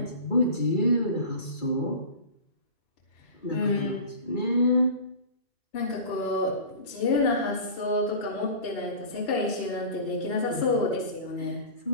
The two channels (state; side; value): late; right; 2.9 ms